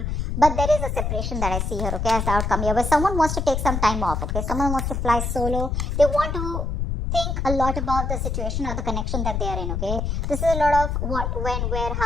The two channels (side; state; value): left; noise; rumble, 1 dB below the sound